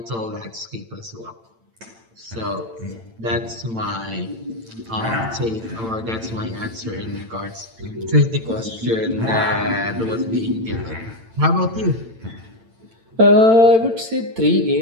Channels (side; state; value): left; late; 8.9 ms